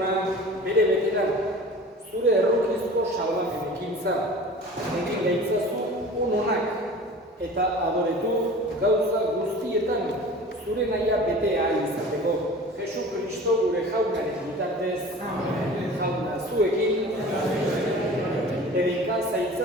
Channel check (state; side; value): normal; both; correlation 0.40